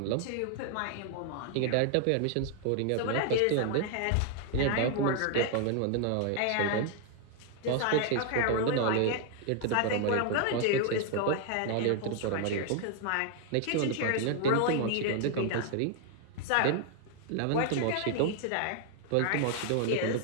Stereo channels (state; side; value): different; both; correlation 0.00